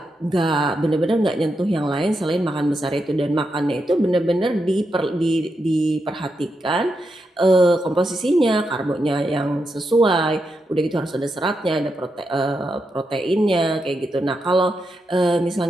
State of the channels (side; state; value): both; normal; correlation 0.85